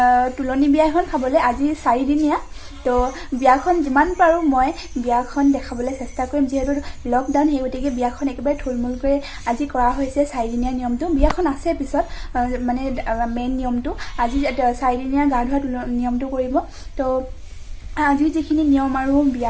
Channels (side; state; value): both; identical; correlation 1.00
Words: তুলনি বিয়া এখন খাবলৈ আজি 4 দিনীয়া তো বিয়াখন যিমান পাৰো মই বিয়াখন দেখাবলৈ চেষ্টা কৰিম যেহেতু লকডাউন সেই গতিকে বিয়াখন একেবাৰে থুলমূলকৈ আজি কৰা হৈছে 4 দিনীয়া নিয়মটো বিয়াখন আছে পিছত মানে মেইন নিয়মটো আজি 4 দিনীয়া গা ধোৱা নিয়মটো কৰিব তো আজি যিখিনি নিয়ম আৰু